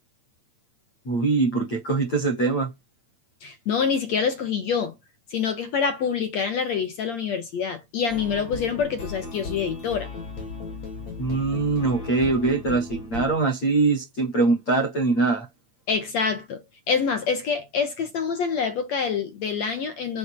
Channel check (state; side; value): late; right; 8.7 ms